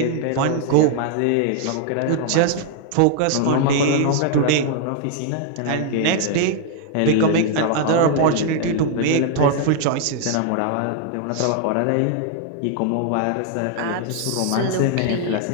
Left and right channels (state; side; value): different; both; correlation 0.00